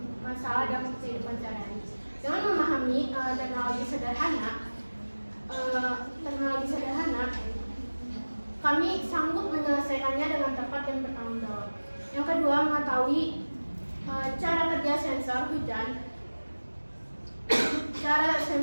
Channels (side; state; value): both; inverted; correlation -1.00